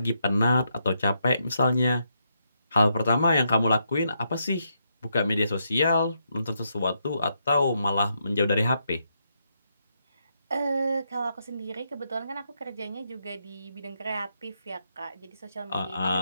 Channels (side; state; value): both; inverted; correlation -0.80